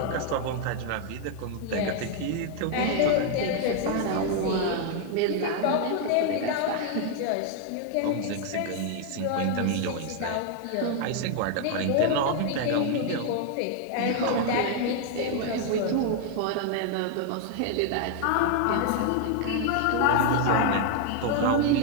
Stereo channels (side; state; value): both; different; correlation 0.00